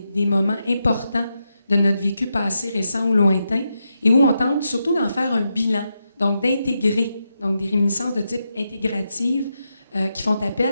moments importants de notre vécu passé, récent ou lointain, et où on tente surtout d'en faire un bilan, donc d'intégrer, donc des réminiscences de type intégrative qui font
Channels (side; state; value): both; inverted; correlation -0.85